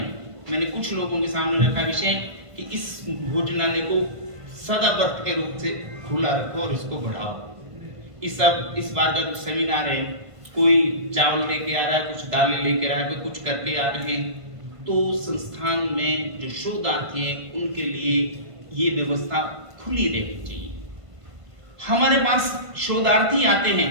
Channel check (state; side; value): late; left; 1.5 ms